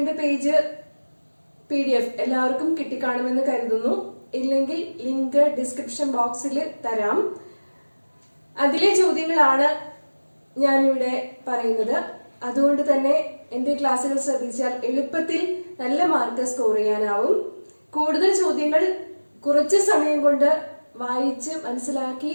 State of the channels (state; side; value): inverted; both; correlation -1.00